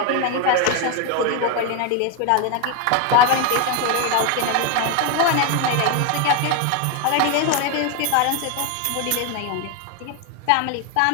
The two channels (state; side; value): different; both; correlation 0.01